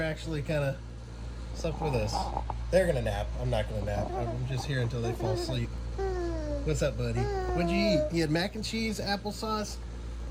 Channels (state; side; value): identical; both; correlation 1.00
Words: actually kind of slept with us. They're gonna nap. I'm not gonna nap. I'm just here until they fall asleep. What's up, buddy? What'd you eat? You had mac and cheese, applesauce,